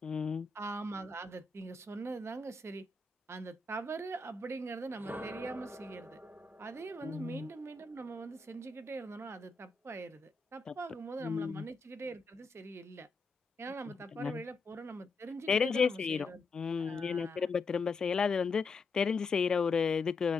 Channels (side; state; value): right; quieter; 3.9 dB